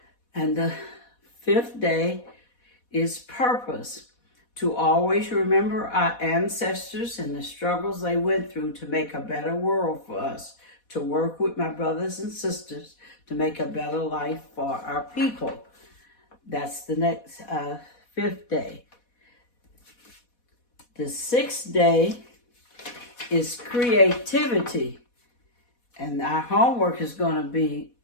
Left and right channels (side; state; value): right; late; 4.1 ms